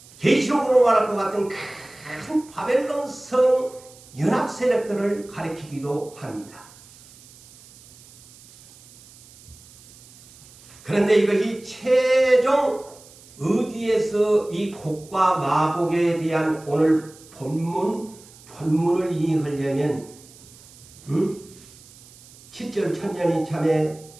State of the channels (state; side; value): noise; right; hiss, 23 dB below the sound